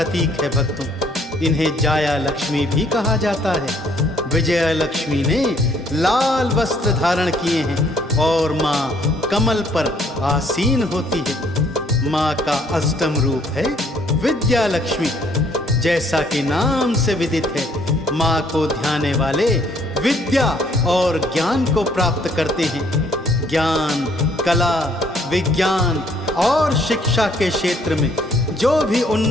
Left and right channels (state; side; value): normal; both; correlation 0.64